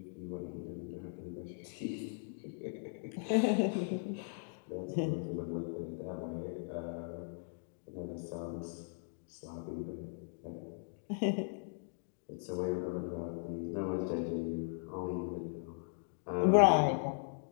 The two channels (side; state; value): right; silent; digital silence